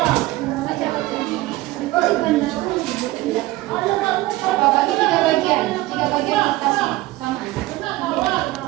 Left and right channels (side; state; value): left; quieter; 18.3 dB